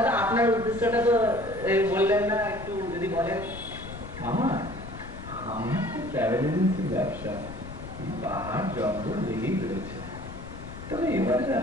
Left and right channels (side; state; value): left; noise; rumble, 12 dB below the sound